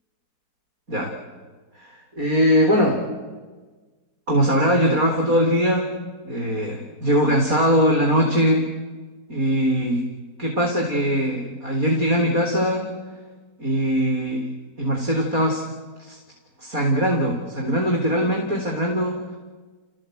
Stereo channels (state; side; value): late; left; 4.2 ms